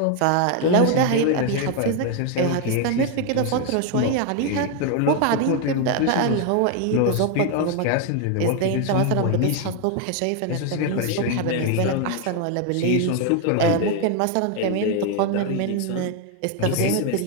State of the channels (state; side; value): different; both; correlation 0.00